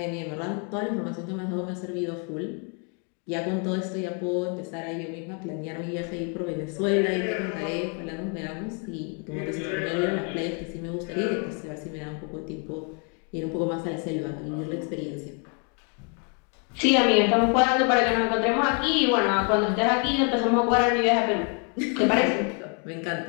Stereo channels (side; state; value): right; quieter; 38.8 dB